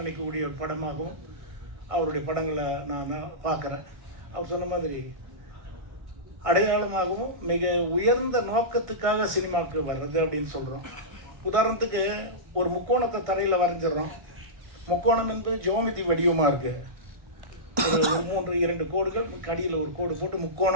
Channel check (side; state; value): left; late; 1.5 ms